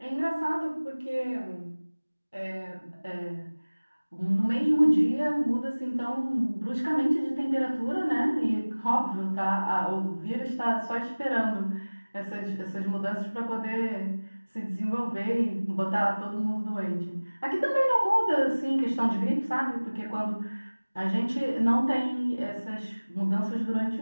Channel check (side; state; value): both; inverted; correlation -1.00